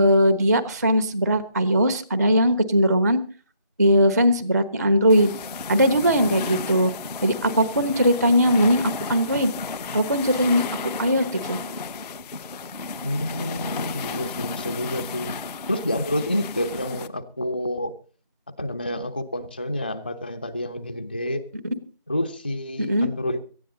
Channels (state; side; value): inverted; both; correlation -0.70